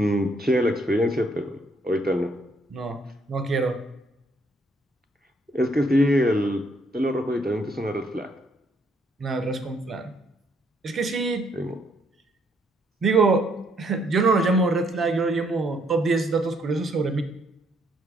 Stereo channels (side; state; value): both; normal; correlation 0.70